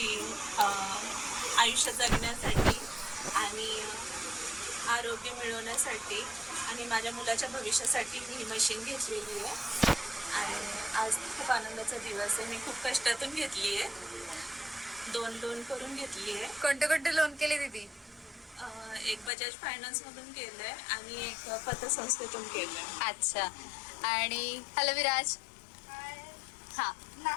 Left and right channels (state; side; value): drops out; right; at 19.3 s